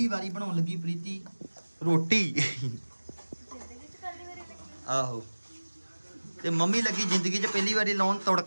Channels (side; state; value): both; inverted; correlation -1.00